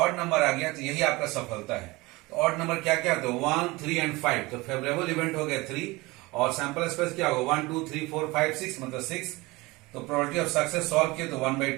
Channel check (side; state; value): left; quieter; 22.4 dB